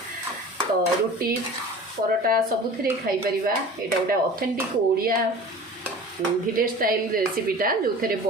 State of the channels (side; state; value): both; normal; correlation 0.40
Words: तो रोटी परोटा सबुथिरे खाई परिबा। एटा गोटे ऑथेंटिक ओडिया विलेज स्टाइल रेसिपीटा जो थे